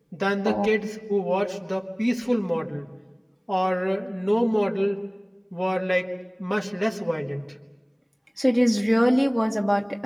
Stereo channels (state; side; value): identical; both; correlation 1.00